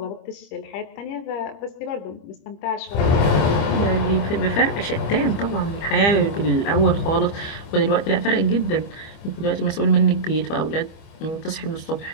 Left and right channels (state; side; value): late; right; 25 ms